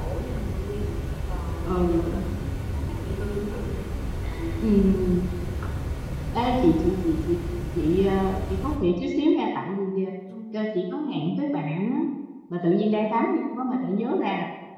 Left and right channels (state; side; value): identical; both; correlation 1.00